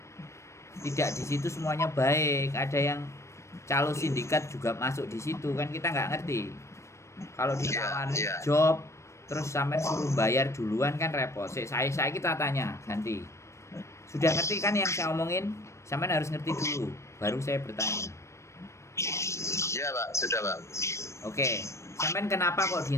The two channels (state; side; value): late; right; 0.14 ms